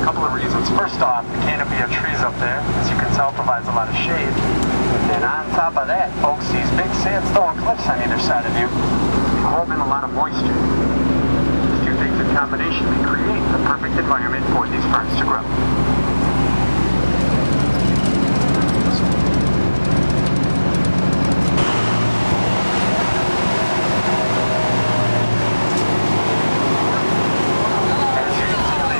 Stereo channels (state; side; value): inverted; both; correlation -1.00